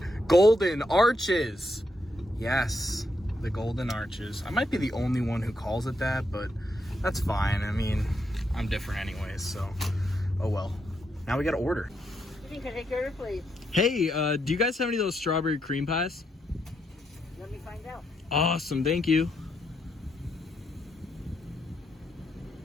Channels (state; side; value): normal; both; correlation 0.79